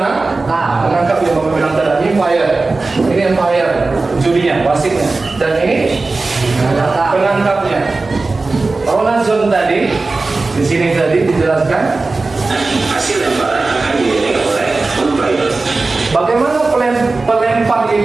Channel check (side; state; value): left; quieter; 3.6 dB